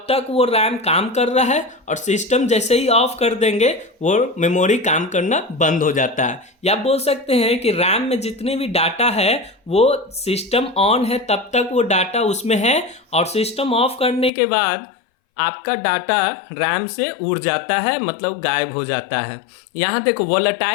तक वो रैम काम कर रहा है, और सिस्टम जैसे ही ऑफ कर देंगे वो मेमोरी काम करना बंद हो जाता है। या बोल सकते हैं कि रैम में जितने भी डाटा है वो सिस्टम ऑन है तब तक वो डाटा उसमें है, और सिस्टम ऑफ करने के बाद आपका डाटा रैम से उड़ जाता है, मतलब गायब हो जाता है। यहाँ देखो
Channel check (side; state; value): right; drops out; at 14.3 s